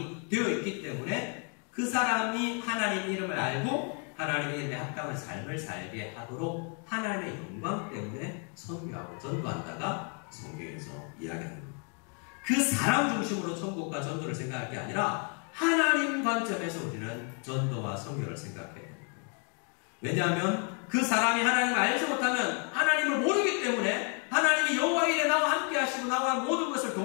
되어 있기 때문에 그 사람이 하나님의 이름을 알고 하나님의 이름에 합당한 삶을 살게 하도록 하나님의 영광 때문에 선교하고 전도한다가 성경에서 이야기합니다. 그 사람 중심으로 천국과 전도를 생각할 게 아니라 하나님 관점에서 우리는 전도와 선교를 생각해야 됩니다. 왜냐하면 그 사람이 하나님을 알지 못하면 하나님을 모르기 때문에 하나님이 여호와의 일에 나와 함께 하시고 나와 모든 것을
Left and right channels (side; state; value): right; quieter; 39.8 dB